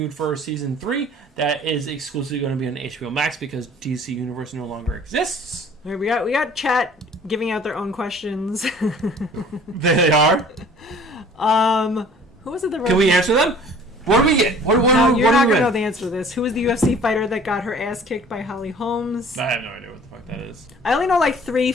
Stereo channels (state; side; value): normal; both; correlation 0.50